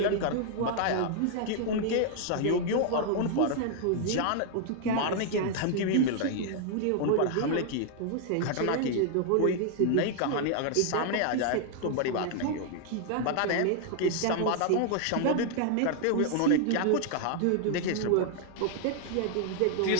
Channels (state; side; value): different; both; correlation 0.00